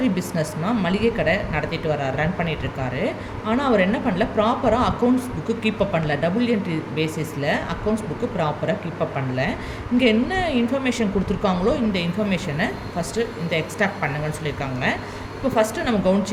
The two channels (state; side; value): identical; both; correlation 1.00